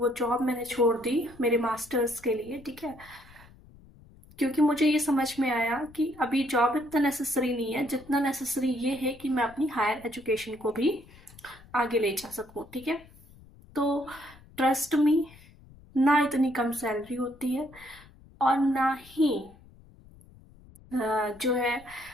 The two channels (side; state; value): left; noise; rumble, 24 dB below the sound